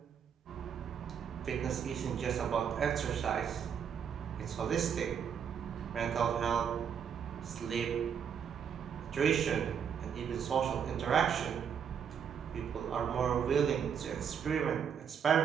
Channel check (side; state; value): left; quieter; 7.7 dB